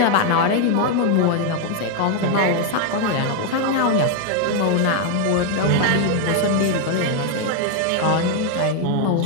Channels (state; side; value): different; both; correlation 0.01